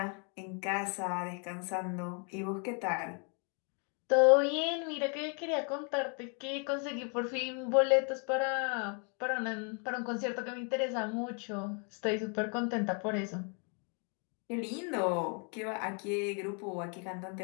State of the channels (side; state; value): right; quieter; 38.2 dB